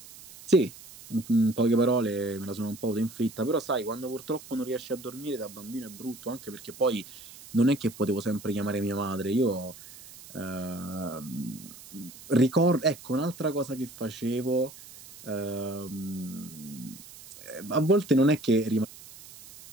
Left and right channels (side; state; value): right; noise; hiss, 18 dB below the sound